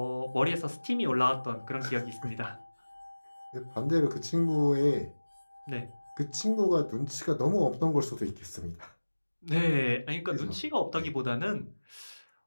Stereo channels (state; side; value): inverted; both; correlation -1.00